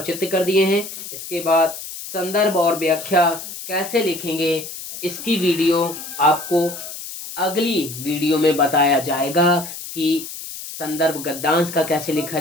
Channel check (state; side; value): noise; left; hiss, 10 dB below the sound